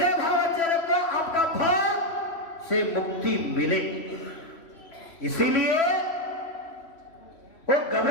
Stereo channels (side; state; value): right; late; 3.1 ms